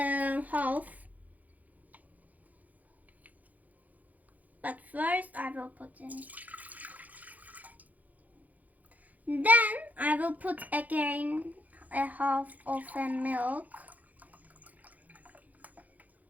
half. But first I will put in. Then I will put again a half of a milk.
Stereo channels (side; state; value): left; late; 0.079 ms